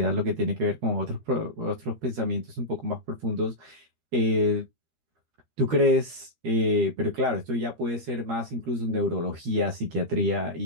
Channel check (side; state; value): left; late; 13 ms